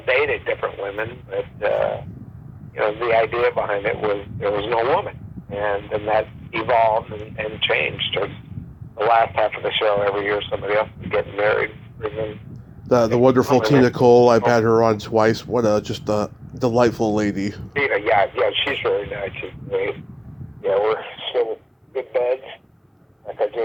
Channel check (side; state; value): both; identical; correlation 1.00